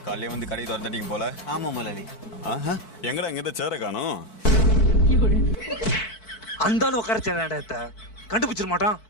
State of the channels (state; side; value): late; right; 4.6 ms